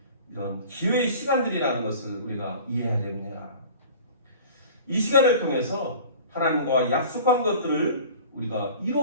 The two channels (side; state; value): both; inverted; correlation -0.42